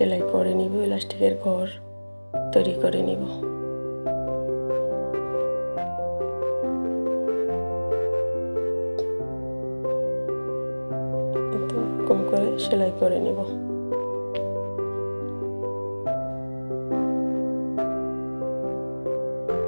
করে নিব। এলাস্টিকের ঘর তৈরি করে নিব। এরকম করে সেলাই করে নিব।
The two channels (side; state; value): both; inverted; correlation -1.00